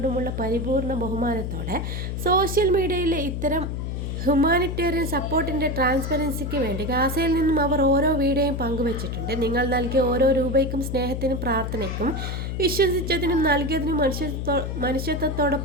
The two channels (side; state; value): left; noise; hum, 3 dB below the sound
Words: പരിപൂർണ ബഹുമാനത്തോടെ സോഷ്യൽ മീഡിയയിലെ ഇത്തരം ഹ്യൂമാനിറ്റേറിയൻ സപ്പോർട്ടിൻ്റെ ട്രാൻസ്പെറൻസിക്ക് വേണ്ടി ഗാസയിൽ നിന്നും അവർ ഓരോ വീഡിയോയും പങ്കുവച്ചിട്ടുണ്ട്. നിങ്ങൾ നൽകിയ ഓരോ രൂപയ്ക്കും സ്നേഹത്തിനും പ്രാർത്ഥനയ്ക്കും വിശ്വസിച്ചതിനും നൽകിയതിനും